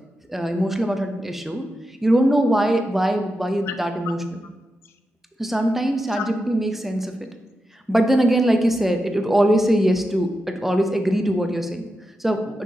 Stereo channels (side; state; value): both; normal; correlation 0.89